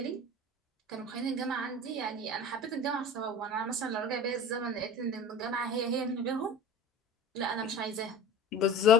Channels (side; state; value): both; normal; correlation 0.37